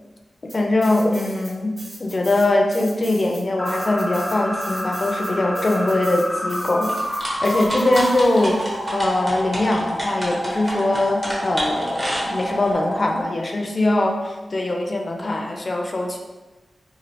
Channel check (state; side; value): normal; both; correlation 0.94